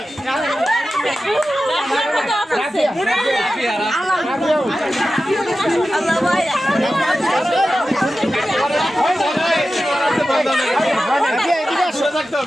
না আল্লাহ ভাই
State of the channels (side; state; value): both; normal; correlation 0.93